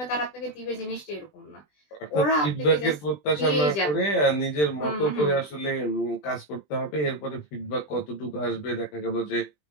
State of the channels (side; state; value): right; late; 20 ms